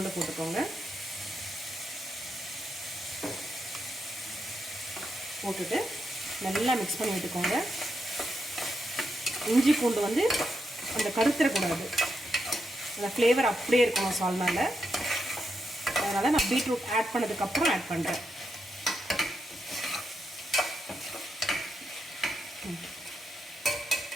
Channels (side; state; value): both; normal; correlation 0.83